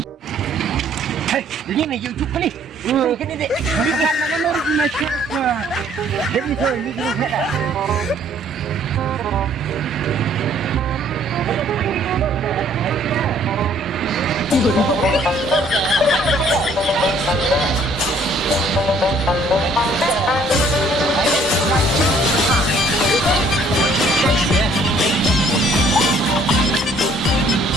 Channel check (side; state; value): both; normal; correlation 0.61